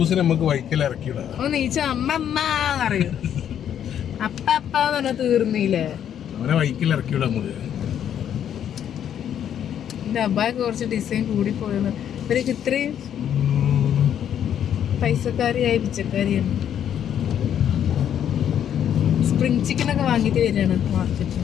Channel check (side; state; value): right; quieter; 9.6 dB